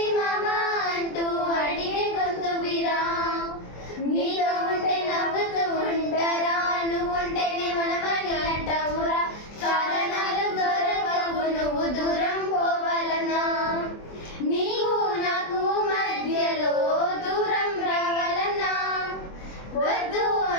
మామా అంటూ అడిగే గొంతు విరా. నీతో ఉంటే నవ్వుతూ ఉంటారా, నువ్వుంటేనే మనమని అంటావురా. కారణాలు దొరకవు నువ్వు దూరం పోవాలన్నా, నీకు నాకు మధ్యలో దూరం రావాలన్నా. వద్దు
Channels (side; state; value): right; late; 24 ms